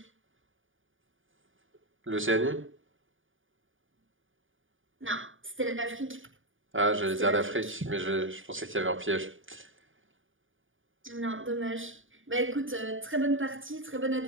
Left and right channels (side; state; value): left; late; 0.58 ms